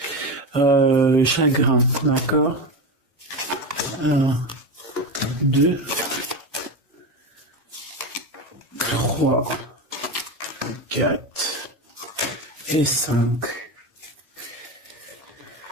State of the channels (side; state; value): both; normal; correlation 0.19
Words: chagrin, d'accord. 1, 2, 3, 4 et 5.